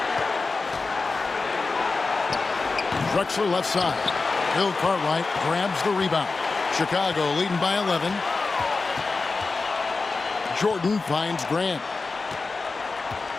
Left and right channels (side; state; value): right; quieter; 4.0 dB